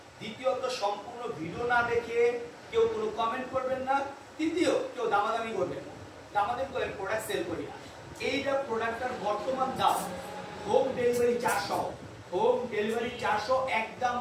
দ্বিতীয়ত সম্পূর্ণ ভিডিও না দেখে কেউ কোনো কমেন্ট করবেন না। তৃতীয়, কেউ দামাদামি করবেন না। দামাদামি করে প্রোডাক্ট সেল করি না। এইটা প্রোডাক্টটার বর্তমান দাম হোম ডেলিভারি 400, হোম ডেলিভারি 400, একদম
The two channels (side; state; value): both; identical; correlation 1.00